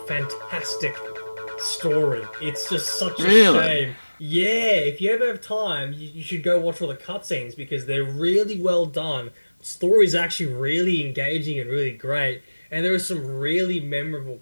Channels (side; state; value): both; inverted; correlation -1.00